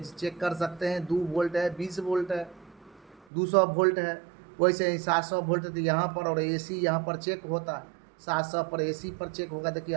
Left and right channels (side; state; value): left; drops out; at 3.2 s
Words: चेक कर सकते हैं। 2 वोल्ट है, 20 वोल्ट है, 200 वोल्ट है। वैसे ही 700 वोल्ट तो यहाँ पर, और एसी यहाँ पर चेक होता है। 700 पर एसी पर चेक होगा। देखिए